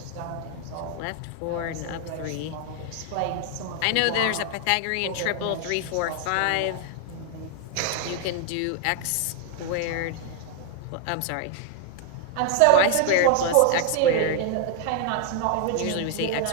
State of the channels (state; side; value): different; both; correlation 0.00